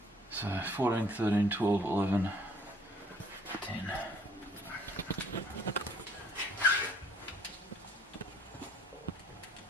So 14, 13, 12, 11, 10.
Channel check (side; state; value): both; normal; correlation 0.59